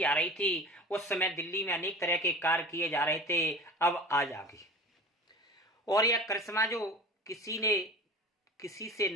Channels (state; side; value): normal; both; correlation 0.37